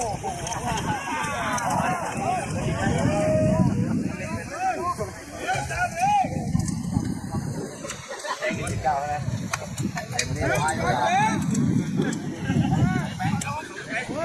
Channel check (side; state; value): both; identical; correlation 1.00